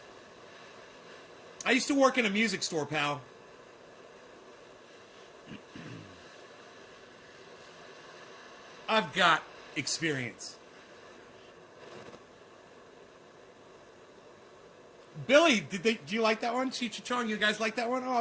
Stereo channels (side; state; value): both; identical; correlation 1.00